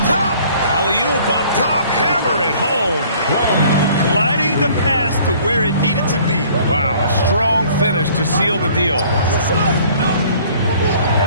top. Alley-oop up top. Hammer it home. Gliding the pass to where it needed to be. Wow, a strong finish to seal the deal.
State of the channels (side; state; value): both; inverted; correlation -0.55